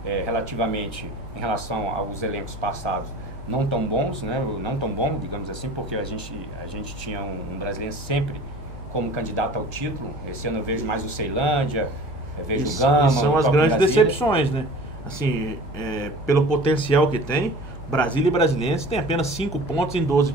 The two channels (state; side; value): noise; right; hum, 15 dB below the sound